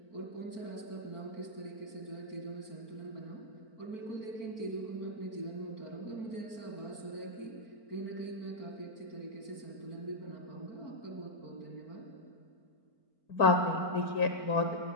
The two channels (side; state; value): right; late; 4.5 ms